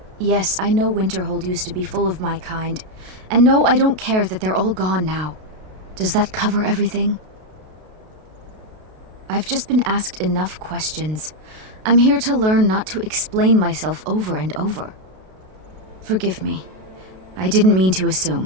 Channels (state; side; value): late; left; 32 ms